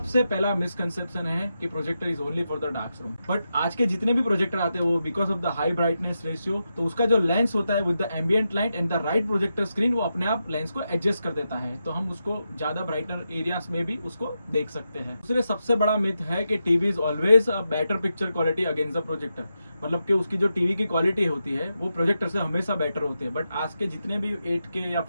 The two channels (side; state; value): both; inverted; correlation -0.87